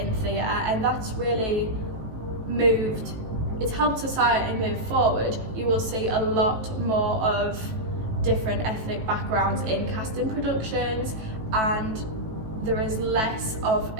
theatre, and that's really it's helped society move forward. You will see a lot more of different ethnic backgrounds in casting productions, and there is less of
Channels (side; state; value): left; late; 18 ms